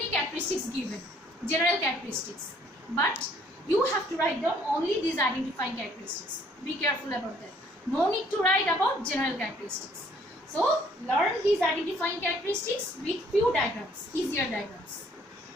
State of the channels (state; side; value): normal; both; correlation 0.62